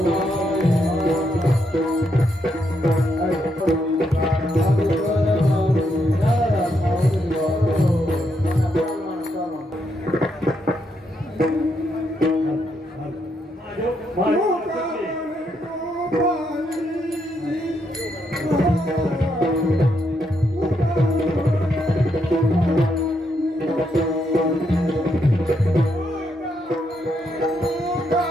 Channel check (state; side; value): normal; both; correlation 0.78